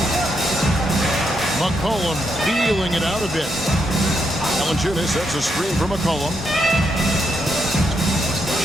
McCollum feeling it out a bit. Valanciunas sets a screen for McCollum.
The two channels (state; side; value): normal; both; correlation 0.80